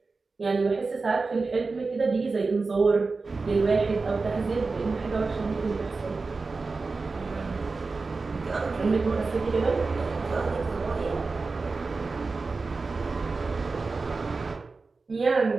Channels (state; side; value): quieter; left; 4.0 dB